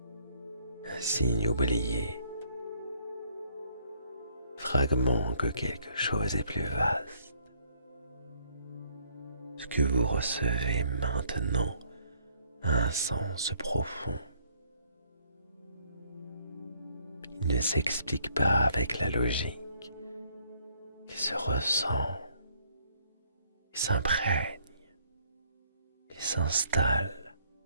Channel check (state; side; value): inverted; both; correlation -0.65